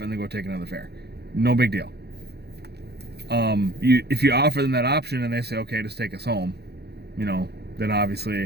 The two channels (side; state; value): left; late; 0.48 ms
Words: and then go take another fare. No big deal. If you offer them that option and they say, okay, just take us home, you know, then